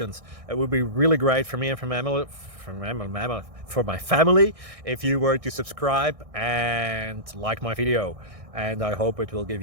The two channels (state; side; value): late; left; 1.6 ms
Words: It would be really great for me and for my family if you were to subscribe and like my video, and I hope it will give